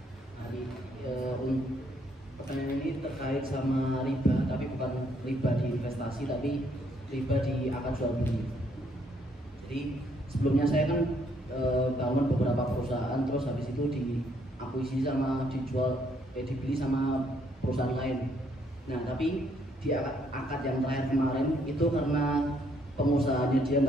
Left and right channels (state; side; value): normal; both; correlation 0.70